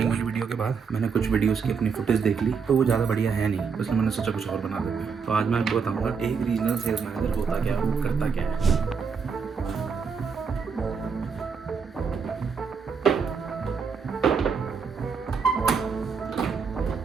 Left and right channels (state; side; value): quieter; left; 5.7 dB